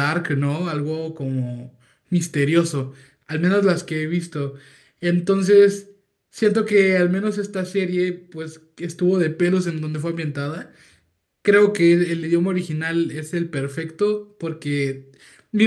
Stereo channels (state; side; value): identical; both; correlation 1.00